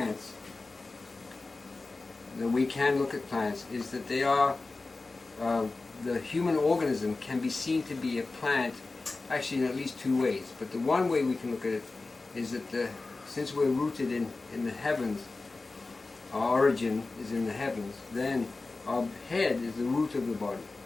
that we can look at plants, is that they are, the human organism can be seen to be a plant, actually in at least two ways. But the one way we can look at it is that since we're rooted in the heavens, our origin is in the heavens, then our head is the root of the body.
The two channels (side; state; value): right; quieter; 3.6 dB